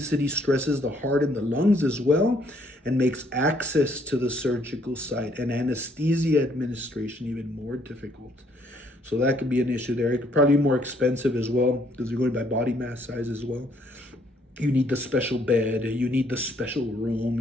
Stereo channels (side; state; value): both; normal; correlation 0.66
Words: stresses the heart and the lungs as well, and makes access to the surgical site and anesthesia administration even more difficult. So that could be an issue there. It could probably be more expensive as well, because you're going by body mass size as well. You need the special bed, you need the special room,